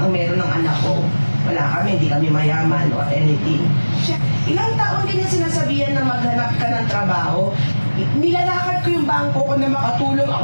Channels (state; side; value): inverted; both; correlation -1.00